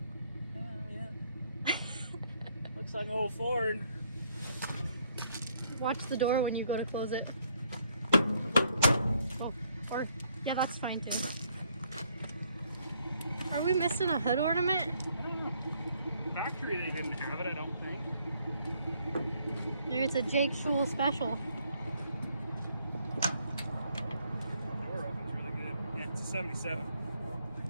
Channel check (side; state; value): both; inverted; correlation -0.68